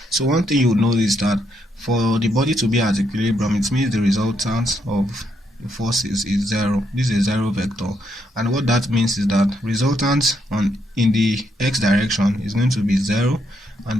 So one thing you would know is that for the body to be at equilibrium, it means the resultant of the forces is 0. This is a 0 vector, and what that means is that resultant in the x direction is going to be 0, and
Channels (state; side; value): normal; both; correlation 0.76